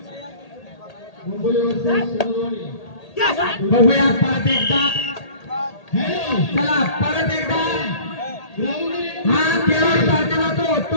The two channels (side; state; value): right; late; 1.8 ms